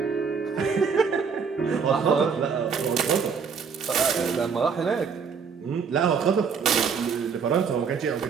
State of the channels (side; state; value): left; quieter; 6.0 dB